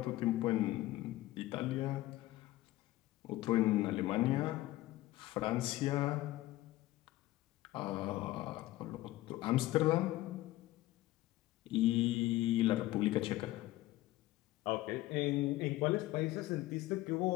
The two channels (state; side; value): quieter; right; 16.7 dB